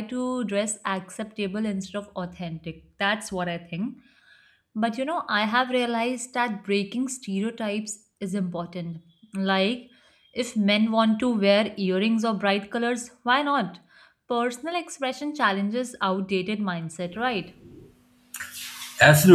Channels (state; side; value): identical; both; correlation 1.00